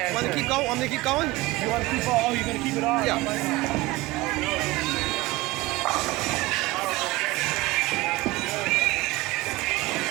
want to keep going? Want me to keep going? You want to keep on? Oh, you're going to keep it on? Yeah.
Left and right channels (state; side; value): quieter; left; 20.1 dB